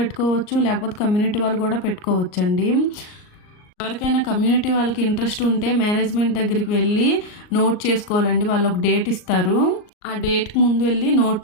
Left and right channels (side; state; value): right; late; 38 ms